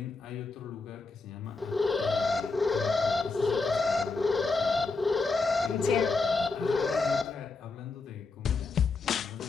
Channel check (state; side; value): quieter; right; 3.9 dB